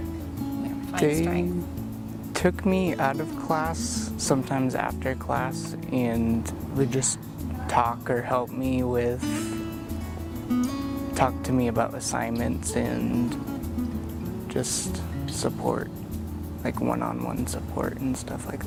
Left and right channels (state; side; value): identical; both; correlation 1.00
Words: they took me out of class sometimes after class and would just talk or help me with, talk to me about assignments and just support, like one-on-one support and stuff like